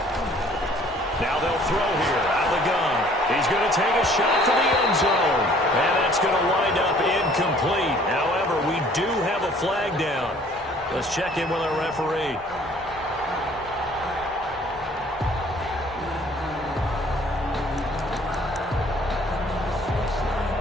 Now they'll throw here out of the gun. He's going to take a shot for the end zone. And that's going to wind up incomplete. However, we do have a flag down. Let's check in with our referee.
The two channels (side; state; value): both; normal; correlation 0.56